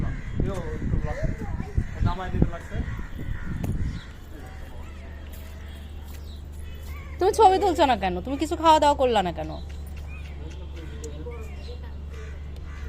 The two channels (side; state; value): both; identical; correlation 1.00